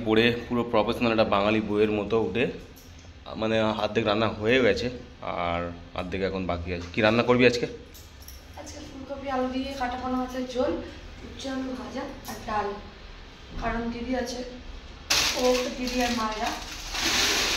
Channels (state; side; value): identical; both; correlation 1.00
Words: পরে পুরো প্রফেশনাল একটা বাঙালি বইয়ের মতো উঠে মানে অর্ধেক রান্না হয়ে গেছে আর অর্ধেক এখন বাকি আছে। কি রান্না করবি আজকে? আজকে ফুলকপি আলু দিয়ে কাটা পোনা মাছের ঝোল, উচ্ছে আলু ভাজা আর ডাল। কারণ দিদি আছে, ও দিদি আর